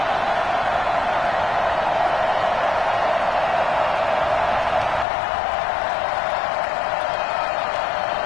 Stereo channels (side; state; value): right; drops out; at 5.1 s